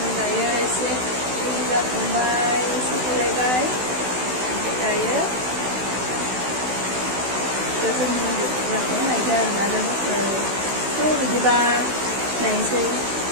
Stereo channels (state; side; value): late; left; 16 ms